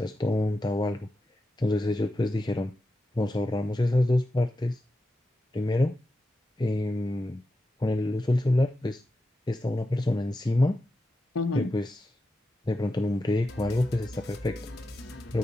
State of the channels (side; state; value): both; normal; correlation 0.89